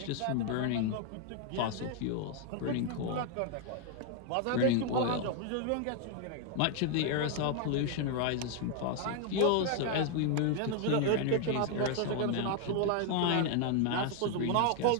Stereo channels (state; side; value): different; both; correlation 0.00